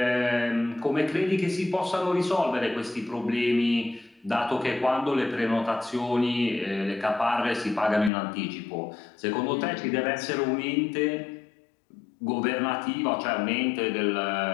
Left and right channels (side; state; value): right; drops out; at 8.1 s